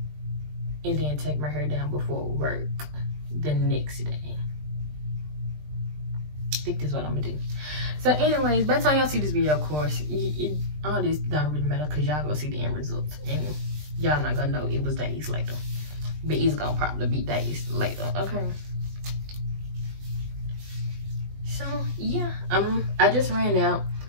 And then take my hair down before work the next day. I think that's what I'm gonna do. So anyways, by the time y'all see this video, of course, all this don't really matter because y'all gonna see the end results. And y'all not gonna know it was days later. But it's gonna probably be days later, okay? So yeah, I just ran out.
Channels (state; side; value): late; left; 20 ms